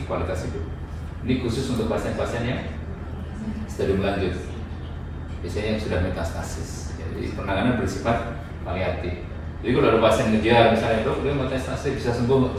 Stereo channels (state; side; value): identical; both; correlation 1.00